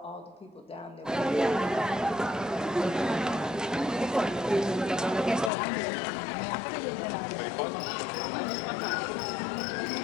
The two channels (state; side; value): drops out; right; at 5.5 s